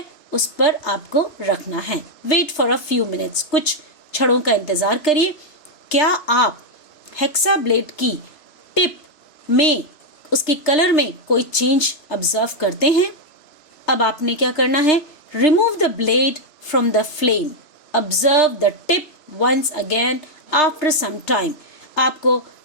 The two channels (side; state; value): right; late; 3.3 ms